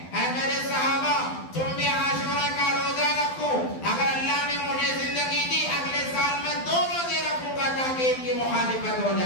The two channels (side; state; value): right; late; 12 ms